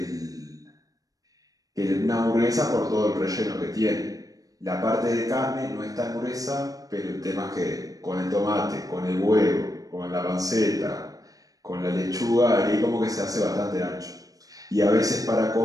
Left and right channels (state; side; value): late; left; 0.17 ms